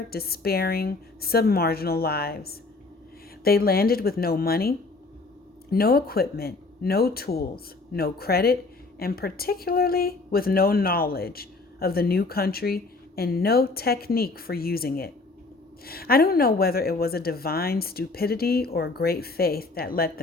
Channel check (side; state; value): right; quieter; 3.6 dB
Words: despairing, submarginal lives. They landed with no money, no equipment, no tools, no credit, and particularly with no knowledge of the new country and no technique for using it. I don't know whether it was a divine stupidity or a great faith that let